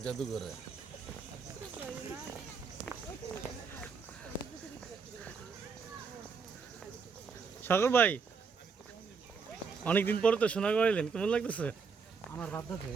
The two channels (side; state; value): left; quieter; 5.3 dB